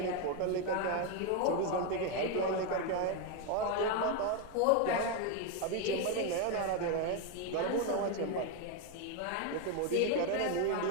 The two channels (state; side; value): different; both; correlation 0.01